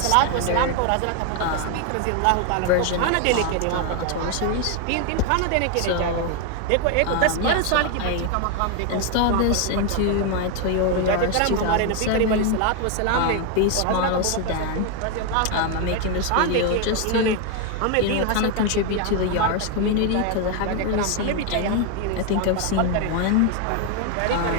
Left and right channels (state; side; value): different; both; correlation 0.01